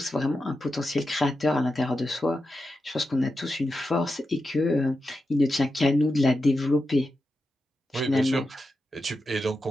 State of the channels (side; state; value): both; normal; correlation 0.89